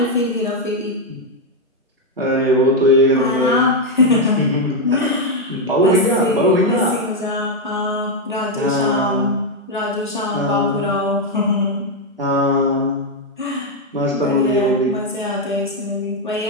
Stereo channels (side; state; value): both; normal; correlation 0.02